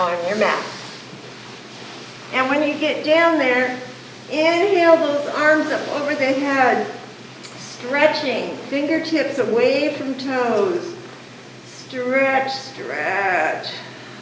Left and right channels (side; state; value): both; identical; correlation 1.00